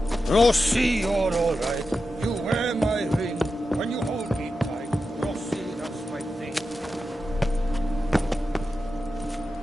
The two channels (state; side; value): normal; both; correlation 0.90